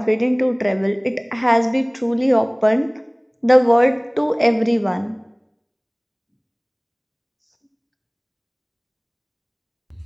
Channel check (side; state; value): both; identical; correlation 1.00